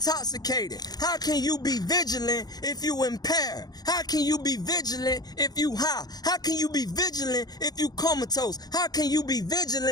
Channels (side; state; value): right; late; 0.19 ms